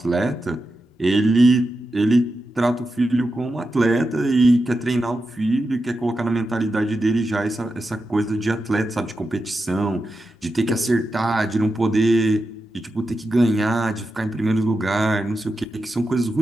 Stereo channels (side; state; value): both; normal; correlation 0.89